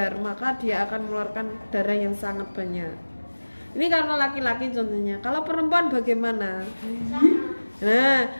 maka dia akan mengeluarkan darah yang sangat banyak. Ini karena laki-laki contohnya. Kalau perempuan bagaimana?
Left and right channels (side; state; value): both; inverted; correlation -1.00